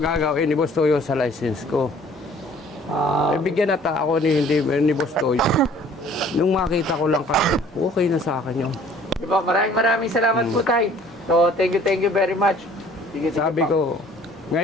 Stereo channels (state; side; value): normal; both; correlation 0.54